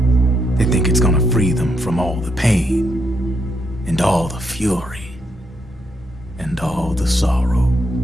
They think it's gonna free them from all the pain, and all the fury, and all the sorrow.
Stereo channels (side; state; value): both; normal; correlation 0.78